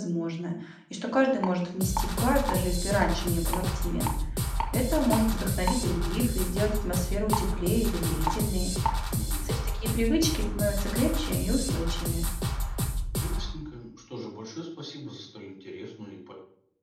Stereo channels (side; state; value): both; identical; correlation 1.00